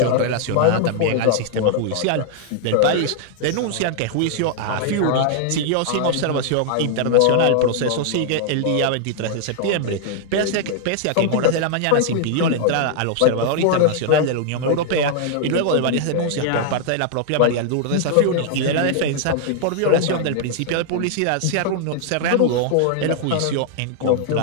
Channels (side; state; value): both; different; correlation 0.00